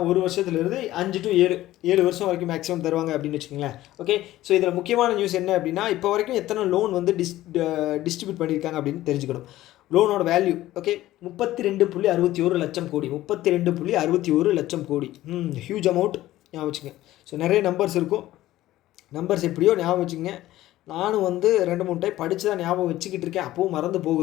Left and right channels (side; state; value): right; quieter; 15.3 dB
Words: 1 வருஷத்துலேருந்து 5 to 7 வருஷம் வரைக்கும் மேக்ஸிமம் தருவாங்க அப்படின்னு வச்சுக்கோங்களேன். ஓகே, ஸோ இதில் முக்கியமான நியூஸ் என்ன அப்படின்னா இப்போ வரைக்கும் எத்தனை லோன் வந்து டிஸ்ட்ரிபியூட் பண்ணியிருக்காங்க அப்படின்னு தெரிஞ்சுக்கணும். லோனோட வேல்யூ 32.61 லட்சம் கோடி. 32.61 லட்சம் கோடி. ஹியூஜ் அமௌண்ட், ஞாபகம் வச்சுங்க. ஸோ நிறைய நம்பர்ஸ் இருக்கும். நம்பர்ஸ் எப்படியோ ஞாபகம் வச்சுங்க. நானும் வந்து 2-3 டைம் படித்து தான் ஞாபகம் வச்சுக்கிட்டு இருக்கேன், அப்போவும் மறந்து